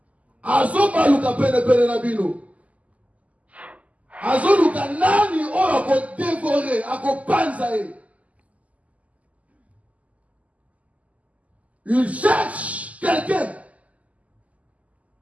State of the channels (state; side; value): late; left; 0.071 ms